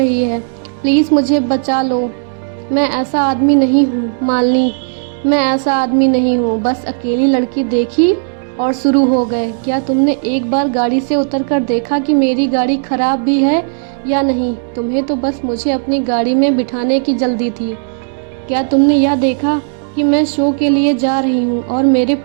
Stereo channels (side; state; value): left; silent; digital silence